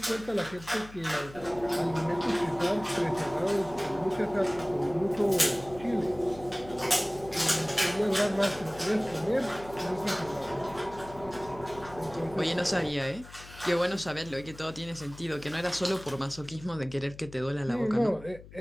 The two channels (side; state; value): left; noise; hum, 18 dB below the sound